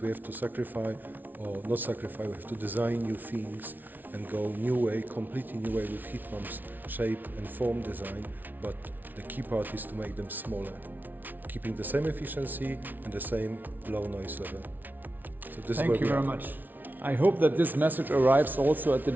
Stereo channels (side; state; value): left; late; 0.085 ms